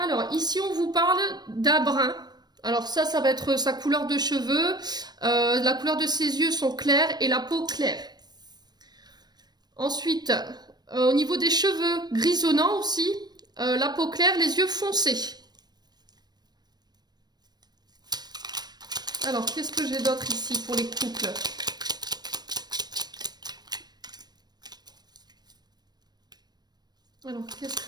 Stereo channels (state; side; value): late; left; 0.20 ms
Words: ici, on vous parle d'un brun. Alors ça va être sa couleur de cheveux. La couleur de ses yeux sont clairs et la peau claire. Ensuite, au niveau des cheveux grisonnants aussi, la peau claire, les yeux foncés. Alors, qu'est-ce que j'ai d'autre ici pour les couples? Alors, qu'est-ce